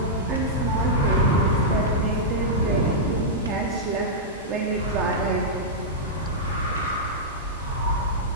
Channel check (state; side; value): normal; both; correlation -0.10